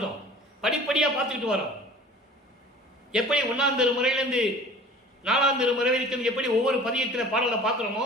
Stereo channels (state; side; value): normal; both; correlation 0.45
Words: படிப்படியா பார்த்துக்கிட்டு வரோம். எப்படி 1ஆம் திருமுறையிலிருந்து 4ஆம் திருமுறை வரைக்கும் எப்படி ஒவ்வொரு பதியத்தில் பாடலை